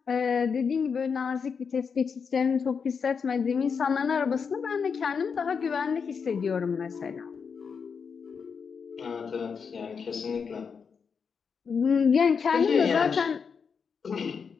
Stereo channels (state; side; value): quieter; right; 6.0 dB